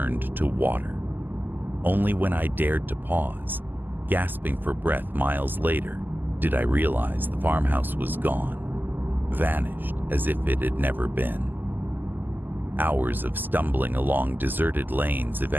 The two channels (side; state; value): left; late; 0.089 ms